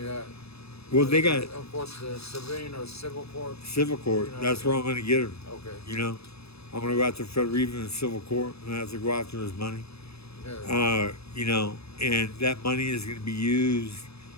got. Well, they got Of course, the civilian or civil court. civil court. You know, That's where I'm going to get him. Okay. You know, I'm going to go after Fred Riva in civil court, and I have to go after his money. Yeah. You know, and that money is going to be used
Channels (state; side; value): late; right; 0.78 ms